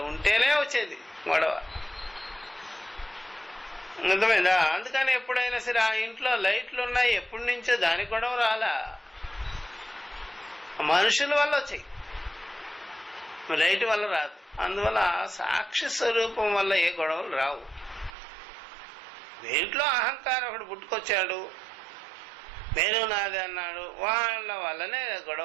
ఉంటేనే వచ్చేది గొడవ. అర్థమైందా? అందుకని ఎప్పుడైనా సరే ఆ ఇంట్లో లైట్లు ఉన్నాయి, ఎప్పటి నుంచో దానికి గొడవ రాలా, మనుషుల వల్ల వచ్చాయి, లైట్ వల్ల రాదు. అందువల్ల సాక్షి స్వరూపం వల్ల ఏ గొడవలు రావు. దేంట్లో అహంకారం ఒకటి పుట్టుకొచ్చాడు, నేను నాది అన్నాడు, వాళ్ళ వల్లనే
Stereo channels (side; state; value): left; drops out; at 18.2 s